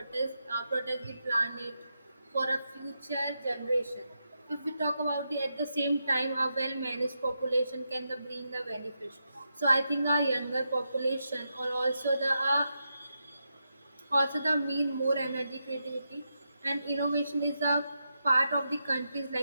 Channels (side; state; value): both; inverted; correlation -0.85